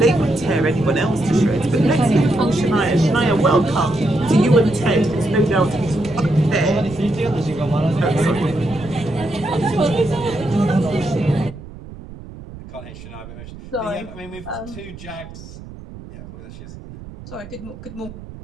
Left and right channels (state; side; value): noise; right; rumble, 15 dB below the sound